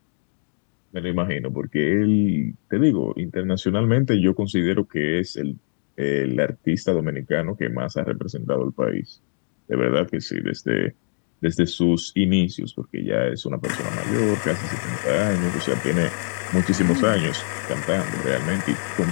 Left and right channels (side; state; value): right; silent; 63 dB below the other